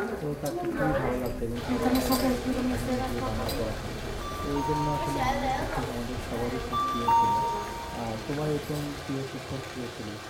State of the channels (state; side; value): identical; both; correlation 1.00